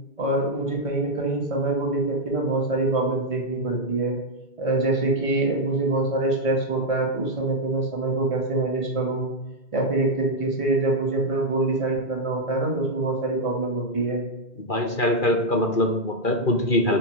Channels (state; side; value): late; right; 2.4 ms